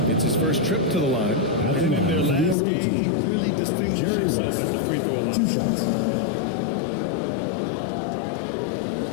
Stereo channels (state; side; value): drops out; right; at 2.6 s